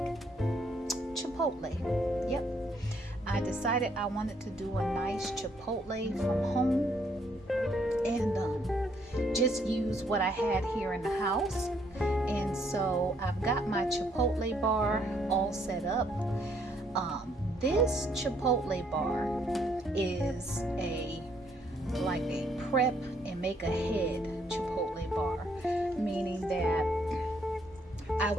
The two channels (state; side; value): normal; both; correlation 0.69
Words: Chipotle. Yep. I decided I wanted to do a nice Chipotle from home and just use what I had here in the house. And so I've got my Chipotle bar all set up. This Chipotle bar is like a prep and make ahead Chipotle bar, meaning that I